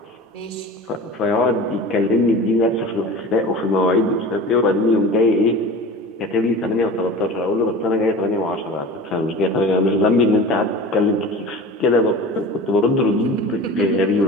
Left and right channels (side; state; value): both; normal; correlation 0.35